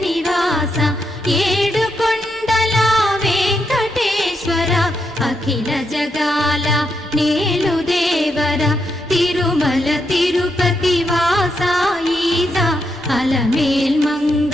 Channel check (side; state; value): both; normal; correlation 0.81